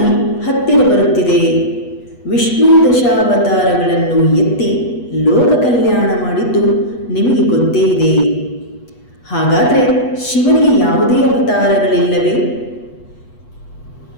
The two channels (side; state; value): right; late; 8.2 ms